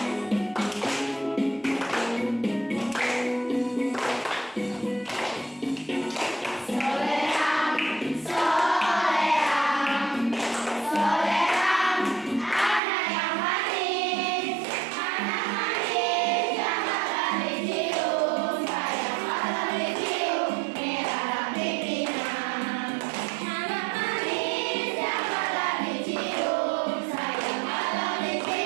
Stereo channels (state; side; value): drops out; left; at 12.8 s